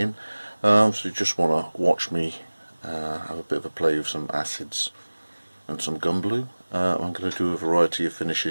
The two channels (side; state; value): both; inverted; correlation -1.00